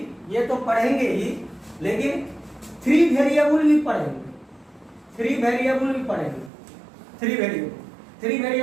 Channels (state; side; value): drops out; left; at 6.5 s